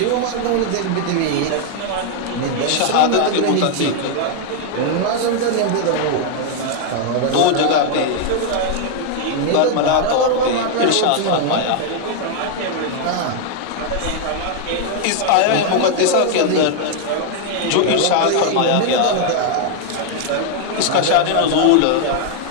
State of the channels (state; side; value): different; both; correlation 0.00